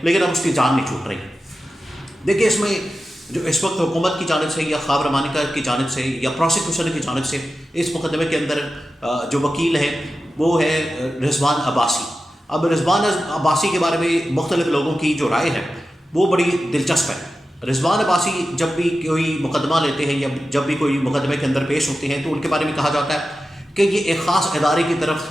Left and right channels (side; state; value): both; normal; correlation 0.92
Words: लेकिन अब उसकी जान नहीं छूट रही। देखिए, इसमें जो इस वक्त हुकूमत की जानिब से या ख्वाब रमानिका की जानिब से या प्रोसिक्यूशन की जानिब से इस मुकदमे के अंदर जो वकील है वो है रिजवान अब्बासी। अब रिजवान अब्बासी के बारे में मुख्तलिफ लोगों की जो राय है वो बड़ी दिलचस्प है। रिजवान अब्बासी जब भी कोई मुकदमा लेते हैं या जब भी कोई मुकदमे के अंदर पेश होते हैं तो उनके बारे में कहा जाता है कि ये एक ख़ास इदारे की तरफ